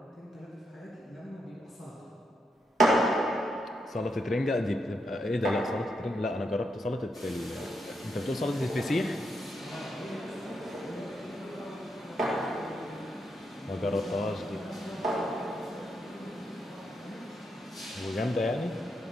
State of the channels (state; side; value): normal; both; correlation 0.81